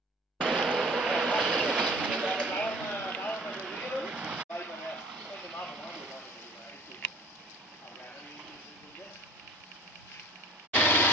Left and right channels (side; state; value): both; normal; correlation 0.48